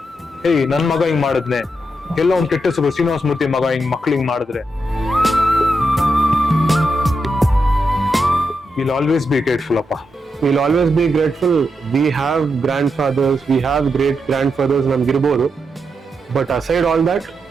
ಏಯ್ ನನ್ ಮಗ ಹಿಂಗ್ ಮಾಡಿದ್ನೆ, ಎಲ್ಲ ಒಂದ್ ಕೆಟ್ಟ ಹೆಸರು, ಶ್ರೀನಿವಾಸ ಮೂರ್ತಿ ಮಗ ಹಿಂಗ್ ಮಕ್ಳು ಹಿಂಗ್ ಮಾಡಿದ್ರೆ. ವಿಲ್ ಆಲ್ವೇಸ್ ಬಿ ಗ್ರೇಟ್ಫುಲ್ ಅಪ್ಪ. We'll always be grateful. We have grandfathers, we have great grandfathers ನಮ್ಗಿರ್ಬೋದು. But aside all that,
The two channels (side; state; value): both; normal; correlation 0.84